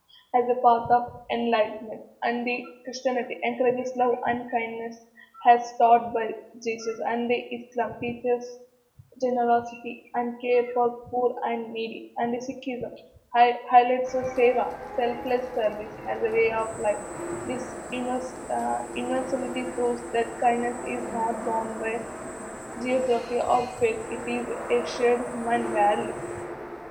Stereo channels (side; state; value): both; identical; correlation 1.00